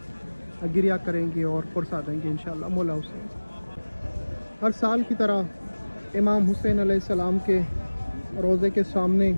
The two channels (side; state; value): both; inverted; correlation -1.00